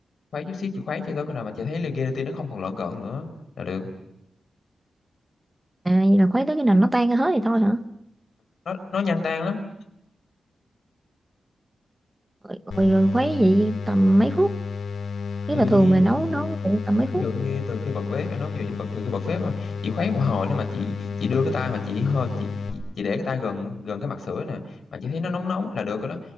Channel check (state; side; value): normal; both; correlation 0.93